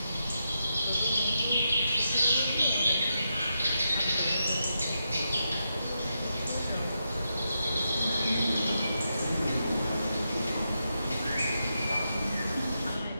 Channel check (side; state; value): both; inverted; correlation -0.85